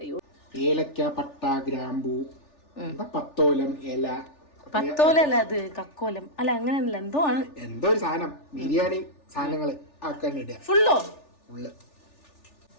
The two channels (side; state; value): right; late; 3.4 ms